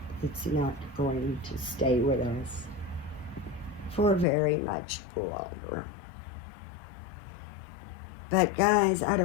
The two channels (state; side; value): drops out; right; at 4.2 s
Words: it's not going to stay with us for very much longer. But guys,